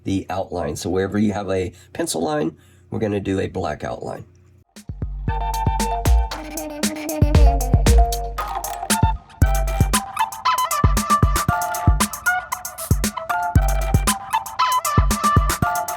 the outline. So wherever you have a pencil line, we're going to do a black outline.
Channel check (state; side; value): identical; both; correlation 1.00